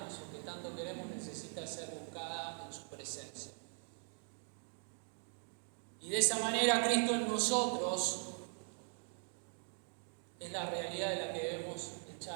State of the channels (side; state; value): left; silent; 50 dB below the other